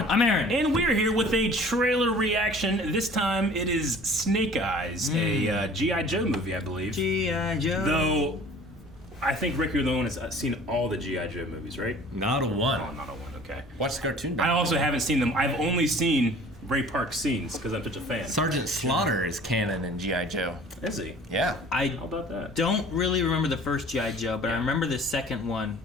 I'm Aaron. And we're here with a trailer reaction. This time it is Snake Eyes, a G.I. Joe movie, I believe. G.I. Joe. Though, I think Rick, you're the one that's seen all the G.I. Joe movies, right? Not a one. Oh, not a one, okay. Watch the cartoon. I also haven't seen them. I've only seen Ray Park scenes because I'm such a fan. Sergeant Slaughter is canon in G.I. Joe. Is he? Yeah. How about that? Don't really remember the first G.I. Joe, but I remember the second one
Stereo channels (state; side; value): normal; both; correlation 0.48